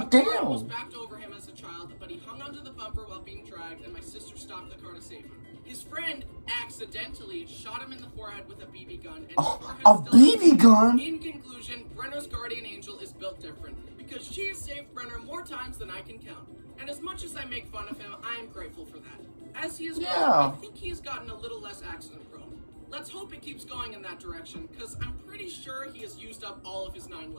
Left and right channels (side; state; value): both; inverted; correlation -1.00